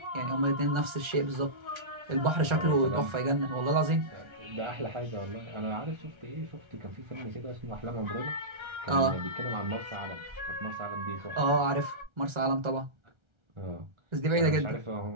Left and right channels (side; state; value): left; late; 1.3 ms